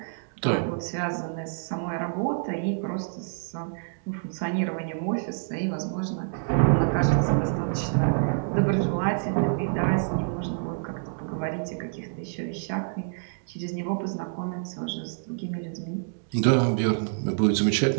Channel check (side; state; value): left; silent; digital silence